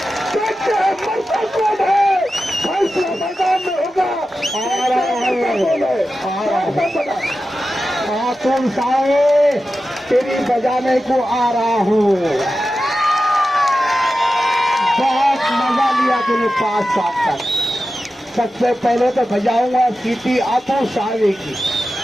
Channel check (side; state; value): both; normal; correlation 0.93